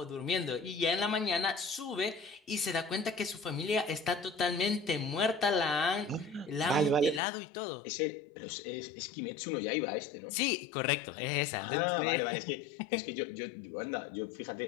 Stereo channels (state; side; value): drops out; right; at 7.2 s